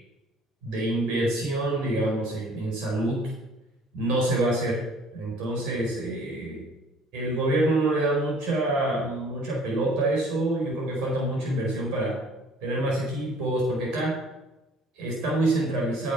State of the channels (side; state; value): both; normal; correlation 0.54